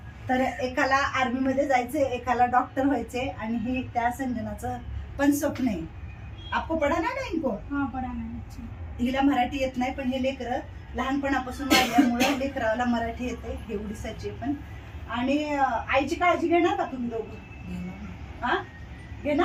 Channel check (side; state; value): both; identical; correlation 1.00